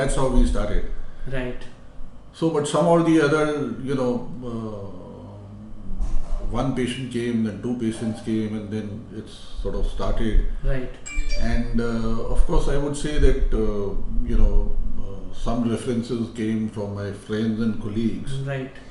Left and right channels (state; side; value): identical; both; correlation 1.00